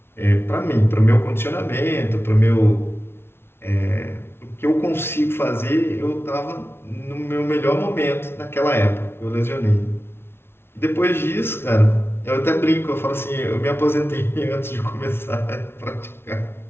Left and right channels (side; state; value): right; late; 0.12 ms